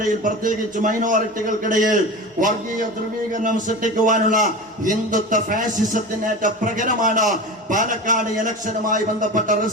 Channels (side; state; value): both; normal; correlation 0.30